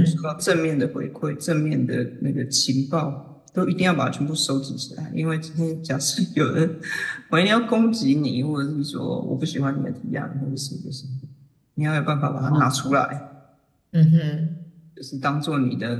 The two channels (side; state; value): both; identical; correlation 1.00